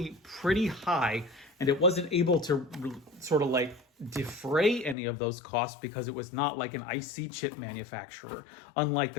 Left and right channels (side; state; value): right; drops out; at 5.0 s